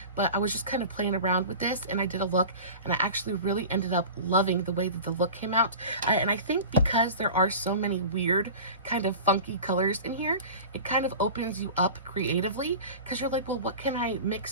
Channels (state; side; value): inverted; both; correlation -0.35